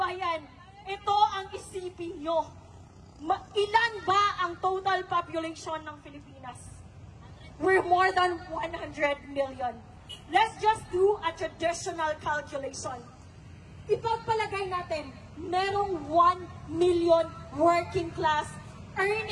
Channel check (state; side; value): identical; both; correlation 1.00